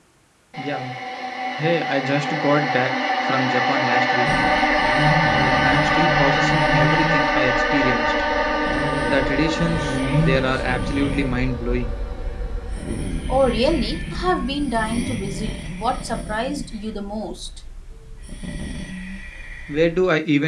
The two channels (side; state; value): both; identical; correlation 1.00